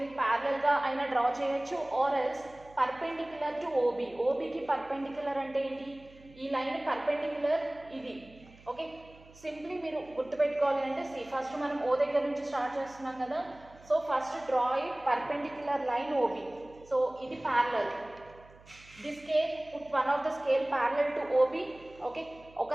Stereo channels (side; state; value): right; noise; hum, 24 dB below the sound